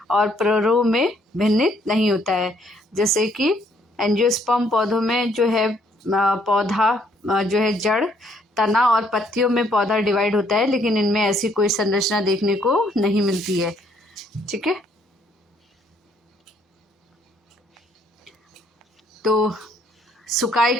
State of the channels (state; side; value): normal; both; correlation 0.67